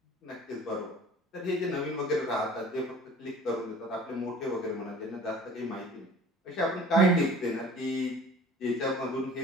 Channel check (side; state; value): both; normal; correlation 0.46